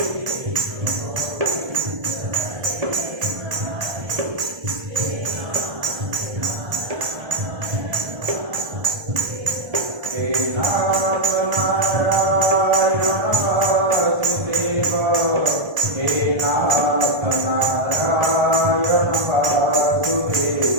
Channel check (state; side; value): late; left; 1.3 ms